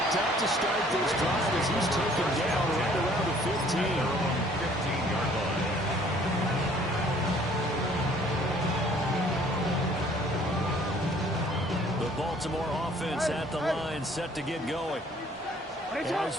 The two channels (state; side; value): normal; both; correlation 0.57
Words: up to start this drive as he's taken down right around the 15. 15-yard line. The Baltimore offense at the line, set to get going. As